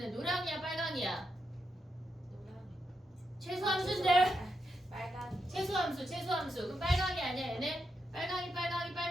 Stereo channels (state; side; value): normal; both; correlation 0.84